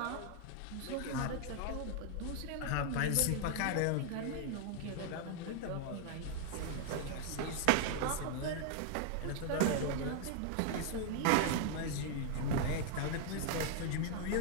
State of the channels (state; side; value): different; both; correlation 0.00